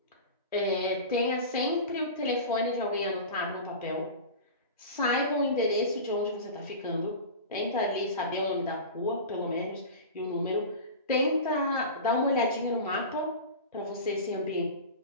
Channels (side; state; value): both; inverted; correlation -0.30